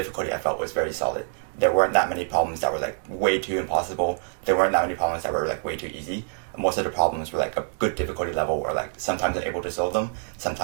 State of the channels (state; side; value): silent; left; digital silence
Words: I felt was very solid. There weren't that many problems that were like way too impossible. There weren't that many problems that were like way too easy. Most of the problems were like a good difficulty level where like sometimes I'm able to solve them,